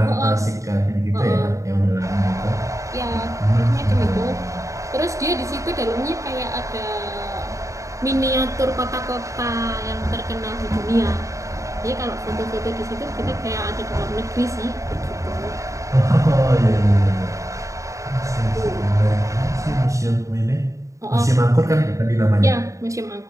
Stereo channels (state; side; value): late; left; 0.15 ms